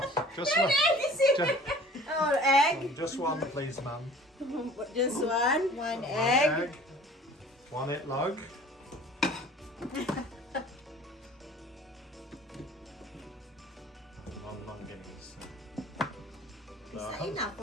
Just one. Oh, egg? Just one, please, ma'am. Just one? One One egg. One it log. One Guinness. Is that enough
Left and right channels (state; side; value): normal; both; correlation 0.47